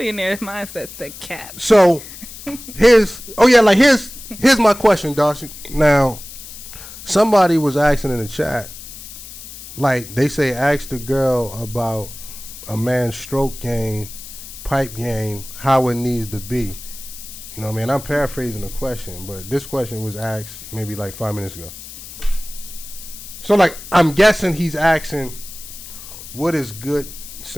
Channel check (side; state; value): left; noise; hiss, 14 dB below the sound